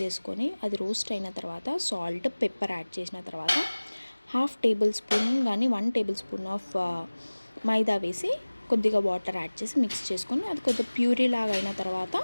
చేసుకొని అది రోస్ట్ అయిన తర్వాత సాల్ట్, పెప్పర్ యాడ్ చేసిన తర్వాత 1/2 tablespoon కానీ 1 tablespoon ఆఫ్ మైదా వేసి కొద్దిగా వాటర్ యాడ్ చేసి మిక్స్ చేసుకొని అది కొద్దిగా ప్యూరీ లాగా అయిన తర్వాత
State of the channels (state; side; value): inverted; both; correlation -1.00